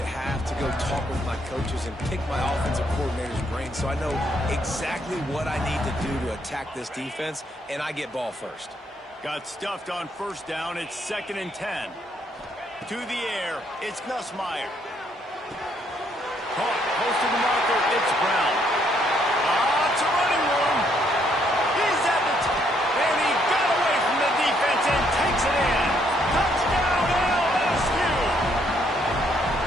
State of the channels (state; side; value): normal; both; correlation 0.71